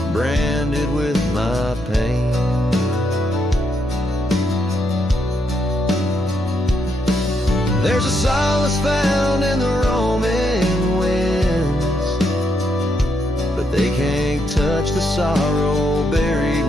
branded with my pain. There's a solace found in the roaming winds, but they can't touch the sorrow buried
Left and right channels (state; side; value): normal; both; correlation 0.78